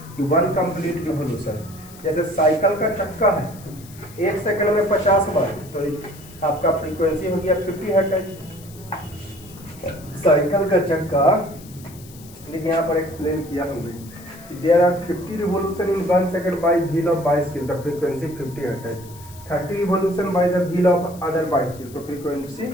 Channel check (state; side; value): noise; left; hiss, 21 dB below the sound